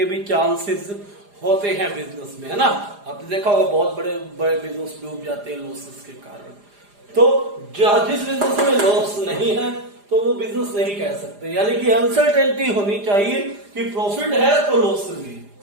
भी चांसेस होते हैं बिजनेस में, है ना। आपने देखा होगा बहुत बड़े बड़े बिजनेस डूब जाते हैं लॉसेस के कारण। तो जिस बिजनेस में लॉस नहीं है तो वो बिजनेस नहीं कह सकते, यानी कि अनसर्टेनिटी होनी चाहिए कि प्रॉफिट है तो लॉस भी है,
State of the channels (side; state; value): left; late; 4.9 ms